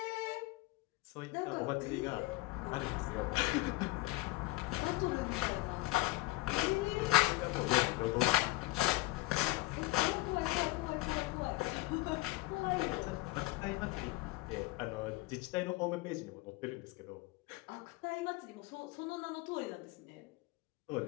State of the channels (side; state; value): right; quieter; 21.0 dB